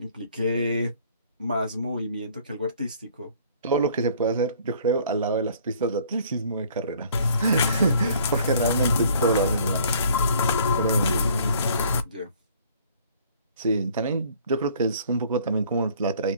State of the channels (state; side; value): inverted; both; correlation -0.56